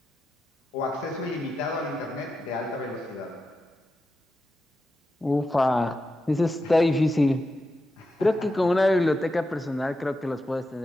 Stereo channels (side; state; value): both; normal; correlation 0.89